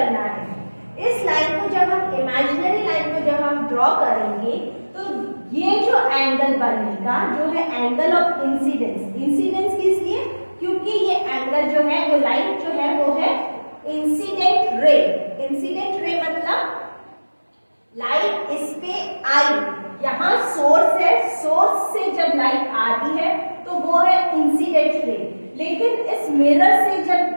है। इस लाइन को जब हम इमेजिनरी लाइन को जब हम ड्रॉ करेंगे तो ये जो एंगल बनेगा जो है एंगल ऑफ इंसिडेंस। इंसिडेंस किस लिए, क्योंकि ये एंगल जो है, वो लाइट जो है वो है इंसिडेंट रे। इंसिडेंट रे मतलब लाइट इस पे आई, यहाँ सोर्स है, सोर्स से जब लाइट आती है तो वो है इंसिडेंट रे, लेकिन इस मिरर से जब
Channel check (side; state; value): both; inverted; correlation -1.00